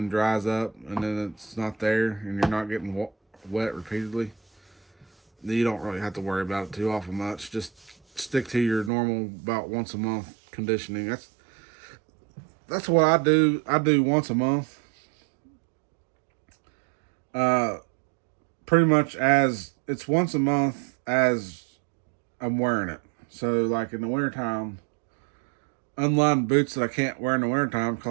dries up and then it's not there and you're not getting wet repeatedly, then you don't really have to worry about it too awful much. Just stick to your normal about once a month conditioning. That's what I do. I do once a month. Pretty much as it's once a month as I'm wearing it. So like in the wintertime, unlined boots that I can't wear in the wintertime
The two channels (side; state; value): left; drops out; at 8.9 s